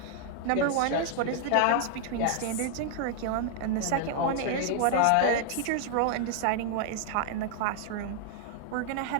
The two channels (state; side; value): different; both; correlation 0.00